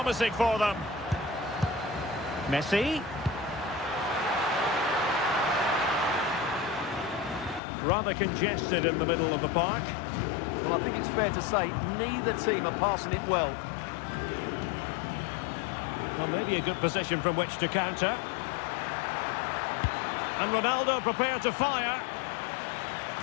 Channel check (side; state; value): right; drops out; at 7.6 s